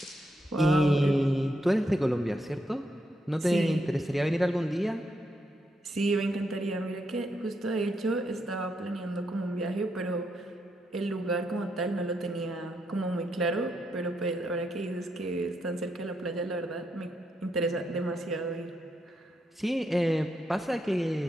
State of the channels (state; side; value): normal; both; correlation 0.80